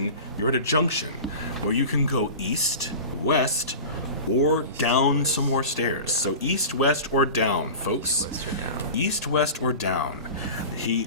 you're at a junction where you can go east, west, or down some more stairs. So east, west, or down, folks. West or down. East, west, or down.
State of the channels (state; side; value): inverted; both; correlation -0.33